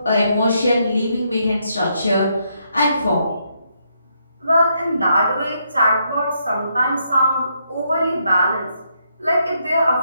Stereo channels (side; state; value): both; inverted; correlation -0.77